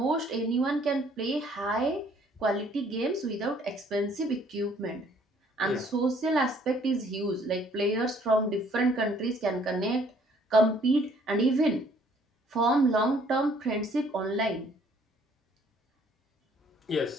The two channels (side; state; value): both; normal; correlation 0.61